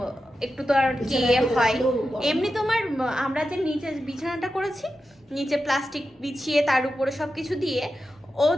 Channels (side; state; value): both; normal; correlation 0.91